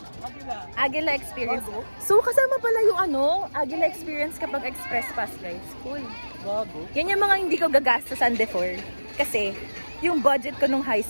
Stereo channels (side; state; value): both; inverted; correlation -1.00